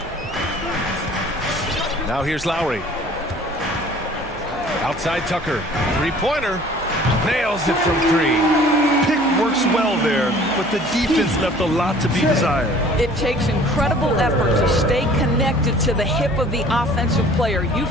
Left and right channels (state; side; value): noise; right; hum, 19 dB below the sound